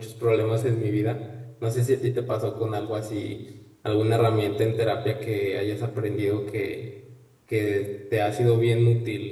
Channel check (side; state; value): both; identical; correlation 1.00